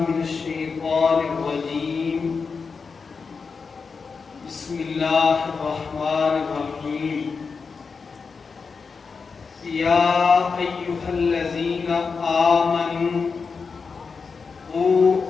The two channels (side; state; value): right; quieter; 5.1 dB